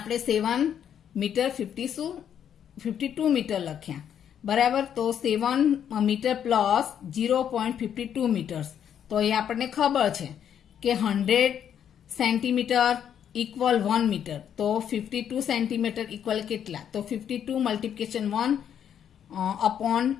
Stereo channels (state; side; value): quieter; right; 9.0 dB